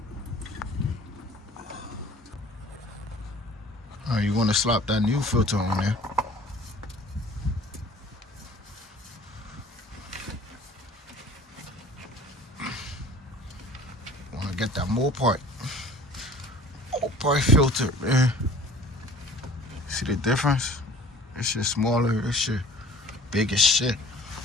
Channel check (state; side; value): normal; both; correlation 0.47